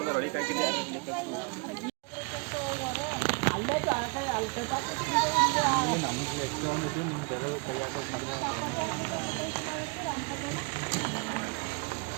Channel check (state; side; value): quieter; left; 31.8 dB